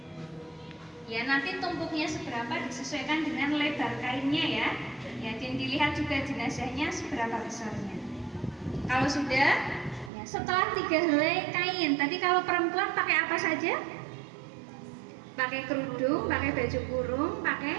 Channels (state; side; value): drops out; left; at 10.1 s